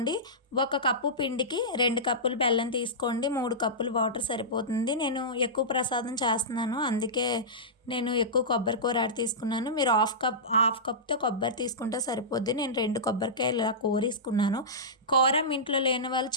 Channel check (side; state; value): both; normal; correlation -0.16